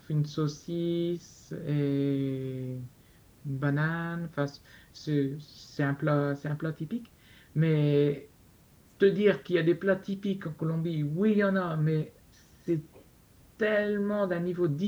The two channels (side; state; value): both; identical; correlation 1.00